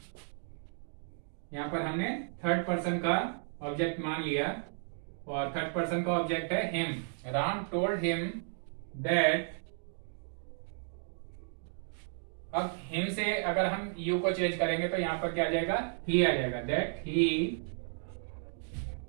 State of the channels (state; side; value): silent; left; digital silence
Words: यहां पर हमने थर्ड पर्सन का ऑब्जेक्ट मान लिया, और थर्ड पर्सन का ऑब्जेक्ट है him. Ram told him that. अब हिम से अगर हम यू को चेंज करेंगे तो यहां पर क्या आ जाएगा, ही आ जाएगा। That